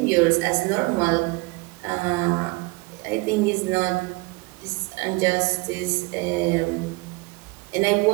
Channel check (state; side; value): quieter; left; 25.6 dB